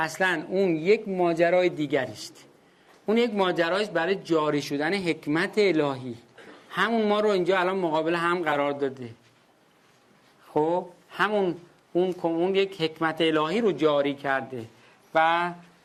اون یک ماجرای دیگری است. اون یک ماجرایست برای جاری شدن حکمت الهی. همون ما رو اینجا الان مقابل هم قرار داده. خب همون اون یک حکمت الهی رو جاری کرده و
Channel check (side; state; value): both; identical; correlation 1.00